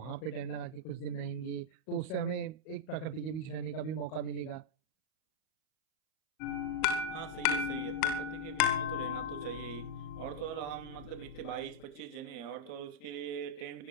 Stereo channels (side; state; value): right; late; 39 ms